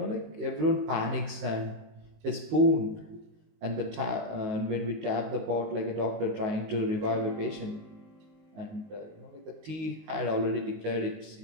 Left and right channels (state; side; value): late; left; 19 ms